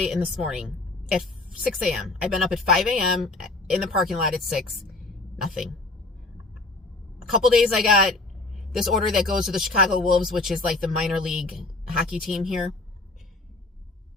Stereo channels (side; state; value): right; quieter; 3.1 dB